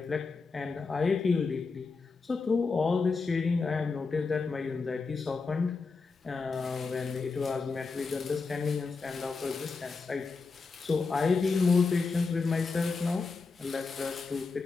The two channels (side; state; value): right; quieter; 4.4 dB